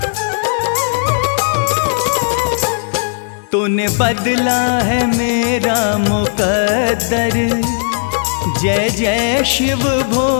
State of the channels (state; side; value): silent; right; digital silence